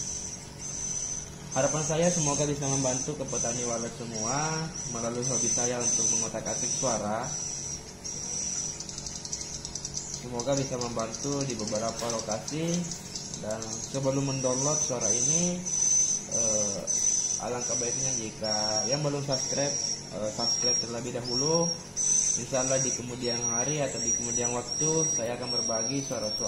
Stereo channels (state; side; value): identical; both; correlation 1.00